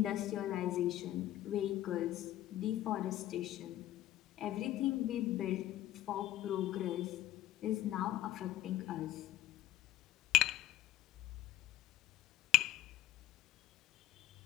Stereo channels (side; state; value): right; quieter; 13.9 dB